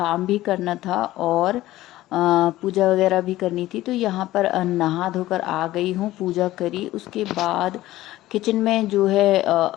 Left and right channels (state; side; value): quieter; right; 15.9 dB